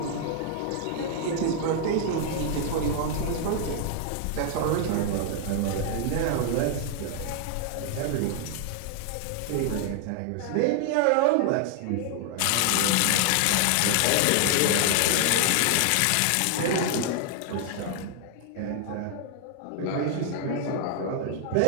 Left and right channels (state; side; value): different; both; correlation 0.00